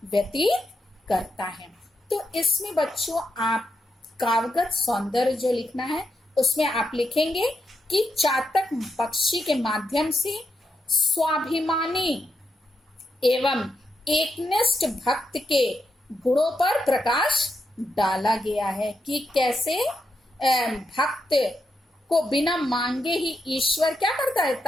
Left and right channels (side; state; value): both; normal; correlation 0.83